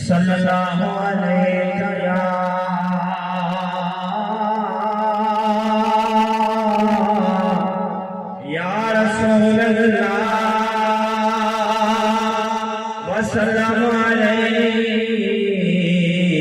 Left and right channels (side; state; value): both; identical; correlation 1.00